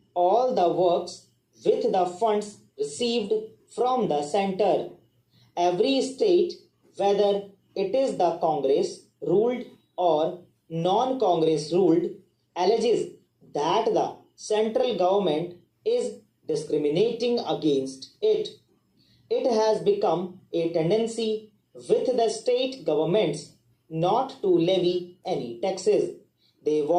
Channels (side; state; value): both; identical; correlation 1.00